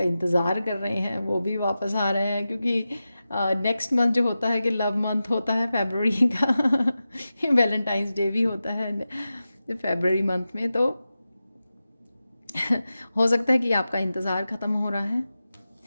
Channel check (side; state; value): both; inverted; correlation -0.93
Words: इंतज़ार कर रहे हैं वो भी वापस आ रहे हैं, क्योंकि नेक्स्ट मंथ जो होता है कि लव मंथ होता है फरवरी का। वैलेंटाइंस डे भी होता है फरवरी मंथ में। तो हो सकता है कि आपका इंतज़ार ख़त्म हो रहा है